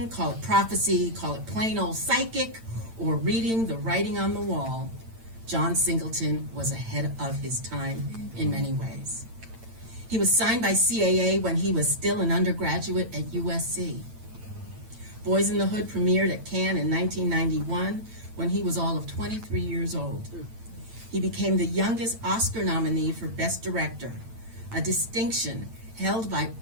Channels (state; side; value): late; left; 8.9 ms